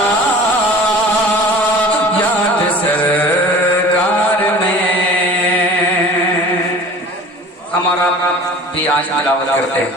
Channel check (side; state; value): both; normal; correlation 0.42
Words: याद सरकार में। हमारा भी आज तिलावत करते